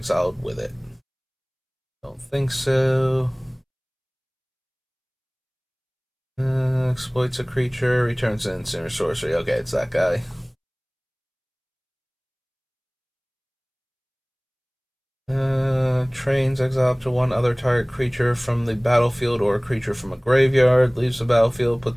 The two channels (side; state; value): both; identical; correlation 1.00